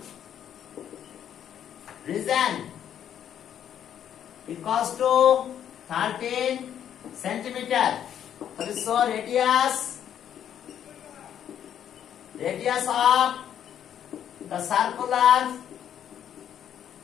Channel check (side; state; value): right; quieter; 9.7 dB